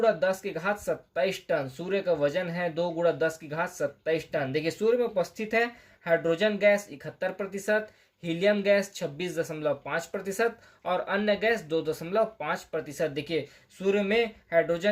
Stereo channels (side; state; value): both; identical; correlation 1.00